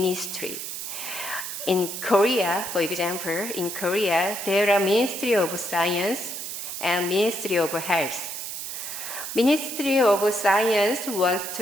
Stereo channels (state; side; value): noise; right; hiss, 6 dB below the sound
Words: In Korea, for example, there are Ministry of Science and Ministry of Health. Ministry of Science wants